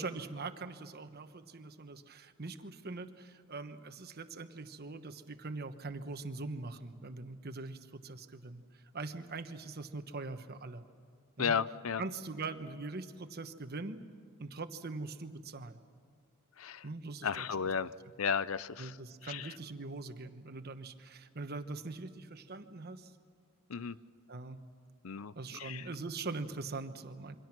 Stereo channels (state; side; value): normal; both; correlation 0.09